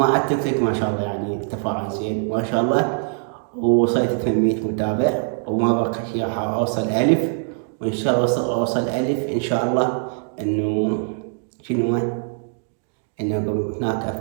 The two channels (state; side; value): silent; left; 64 dB below the other